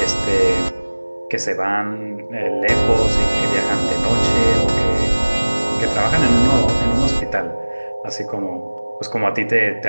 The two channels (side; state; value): both; inverted; correlation -1.00